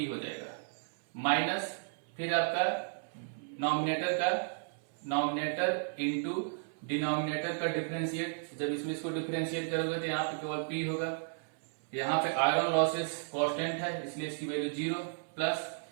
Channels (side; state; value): left; silent; 55 dB below the other